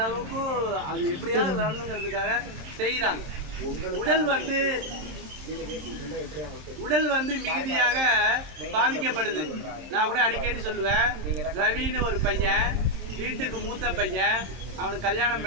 அது எப்படியாவது வரணுங்கிறதுக்காக செய்கிறாங்க. உடல் வந்து மிகுதியாக பாதிக்கப்படுது. நான் கூட அடிக்கடி சொல்லுவேன், ரவின்னு ஒரு பையன், வீட்டுக்கு மூத்த பையன், அவனுக்கு கல்யாணம்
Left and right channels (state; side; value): late; left; 27 ms